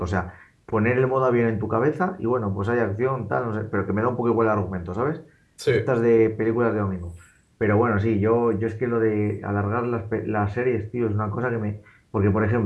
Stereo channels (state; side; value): identical; both; correlation 1.00